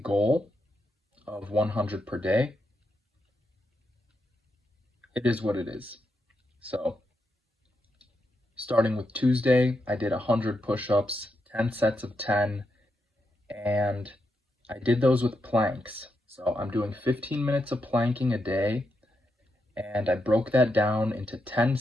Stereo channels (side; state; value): both; normal; correlation 0.84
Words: goal of 100 per day. It is what it is. So, starting with Tuesday, I did 100 push-ups, 10 sets of 10, and I did those with planks. So I'm doing 15 minutes of planking a day, and I broke that down into 10